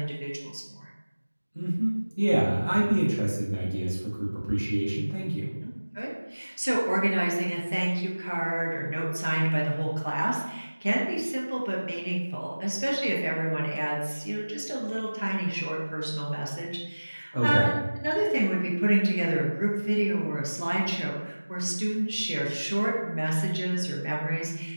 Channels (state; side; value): inverted; both; correlation -1.00